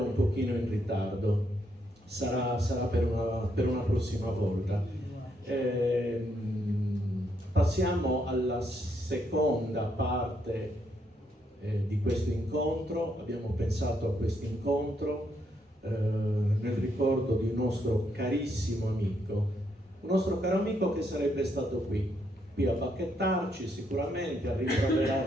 un pochino in ritardo. Sarà per una prossima volta. Passiamo alla seconda parte di questo incontro. Abbiamo pensato a questo incontro nel ricordo di un nostro carissimo amico, un nostro caro amico che sarebbe stato qui a bacchettarci sicuramente, a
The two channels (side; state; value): both; normal; correlation 0.76